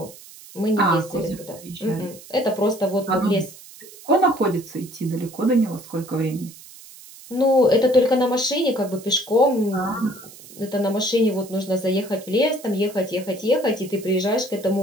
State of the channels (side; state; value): right; noise; hiss, 19 dB below the sound